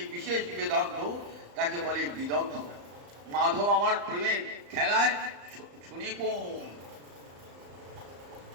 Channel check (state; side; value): late; left; 35 ms